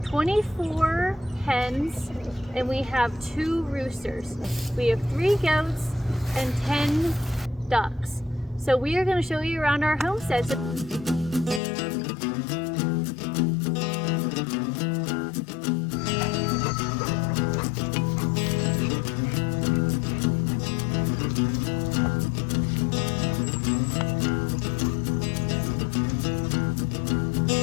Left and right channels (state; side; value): drops out; right; at 11.6 s